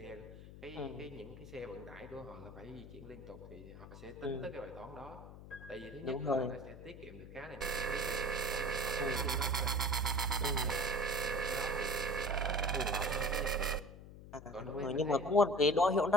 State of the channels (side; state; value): left; noise; hum, 15 dB below the sound